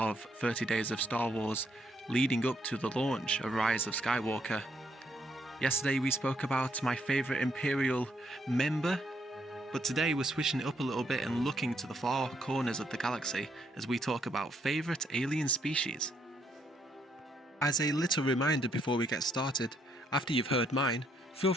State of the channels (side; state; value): both; normal; correlation 0.73